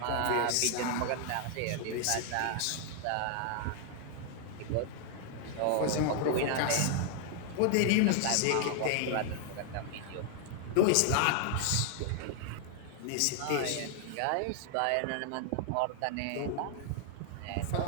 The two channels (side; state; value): both; different; correlation 0.00